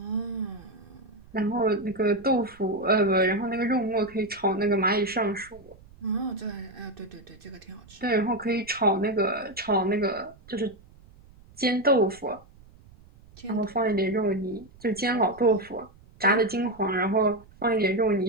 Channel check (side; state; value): right; noise; rumble, 24 dB below the sound